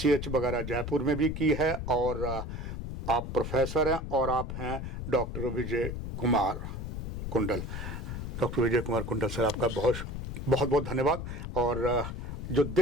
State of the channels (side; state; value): left; noise; rumble, 5 dB below the sound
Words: वगैरह जयपुर में भी की है, और आप प्रोफेसर हैं और आप हैं डॉक्टर विजय कुमार कुंडल। डॉक्टर विजय कुमार कुंडल सर, आपका बहुत बहुत धन्यवाद। और जो